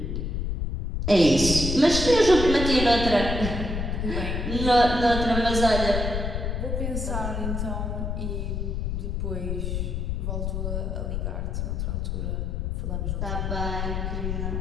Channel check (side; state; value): left; noise; rumble, 2 dB below the sound